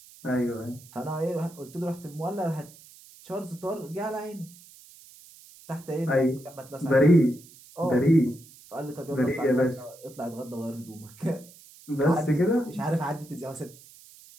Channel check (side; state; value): right; noise; hiss, 22 dB below the sound